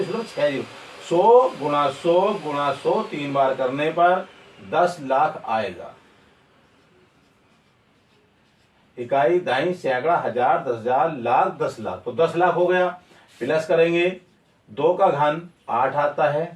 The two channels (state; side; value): identical; both; correlation 1.00